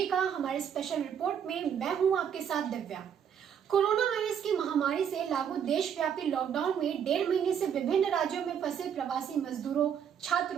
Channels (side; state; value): left; quieter; 8.3 dB